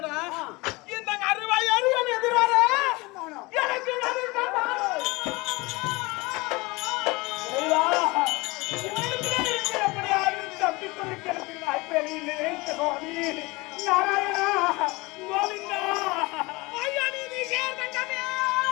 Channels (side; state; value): right; quieter; 23.8 dB